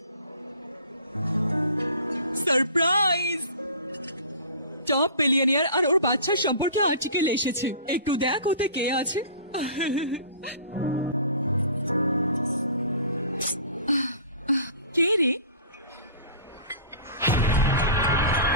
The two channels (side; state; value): both; inverted; correlation -0.42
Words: সারপ্রাইজ! টপ বিলিয়নিয়ার আর ওর বাচ্চার সম্পর্কে আর্টিকেল এসেছে, একটু দেখ ওতে কে আছে। কে রে?